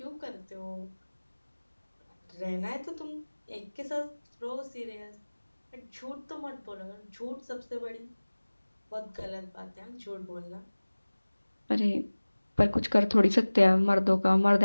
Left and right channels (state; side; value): inverted; both; correlation -1.00